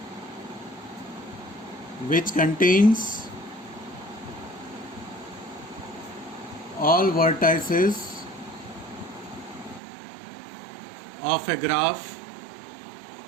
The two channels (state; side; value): drops out; left; at 9.8 s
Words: which contains all vertices of a graph